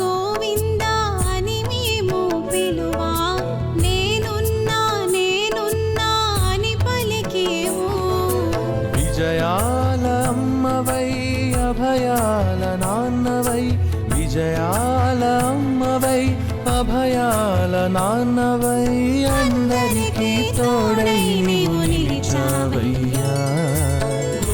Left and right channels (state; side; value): identical; both; correlation 1.00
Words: గోవింద అని మేము పిలువా నేనున్నా నేనున్నా అని పలికేవు విజయాల అమ్మవై అభయాల నాన్నవై విజయాల అమ్మవై అభయాల నాన్నవై అందరికీ తోడై నీవు నిలిచావయ్యా